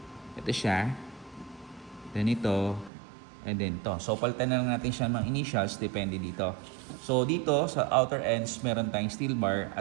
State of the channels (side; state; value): left; drops out; at 2.9 s